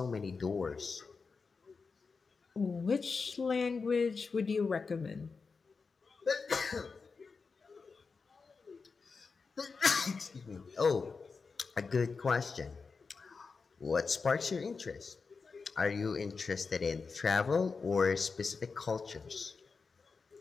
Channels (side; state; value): right; quieter; 4.8 dB